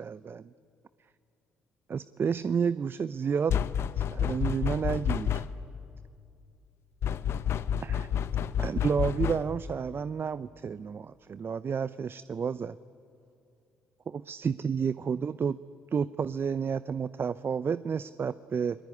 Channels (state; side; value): normal; both; correlation 0.70